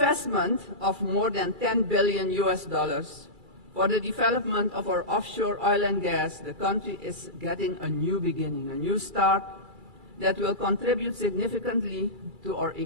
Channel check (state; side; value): late; left; 2.3 ms